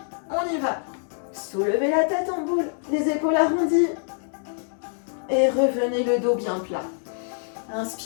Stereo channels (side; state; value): right; silent; 62 dB below the other